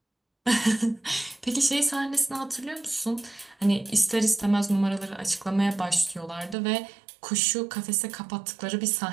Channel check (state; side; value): drops out; left; at 6.6 s